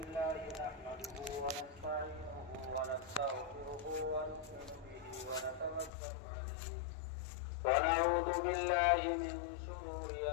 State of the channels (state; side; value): drops out; right; at 5.9 s